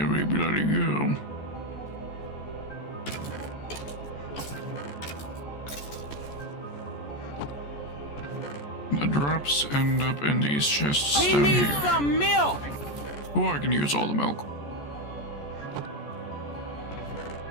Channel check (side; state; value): right; late; 14 ms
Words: we bloody go. The drops end up in these chests down here. We need some milk! Oh, I can use all the milk.